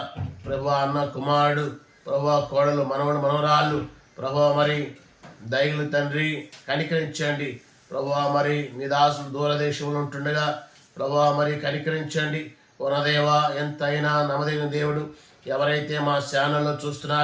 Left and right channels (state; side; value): identical; both; correlation 1.00